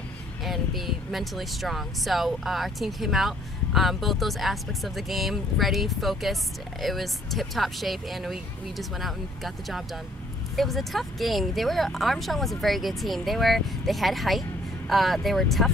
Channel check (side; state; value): both; normal; correlation 0.62